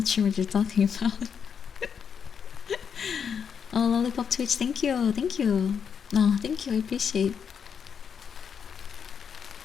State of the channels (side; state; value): right; quieter; 7.1 dB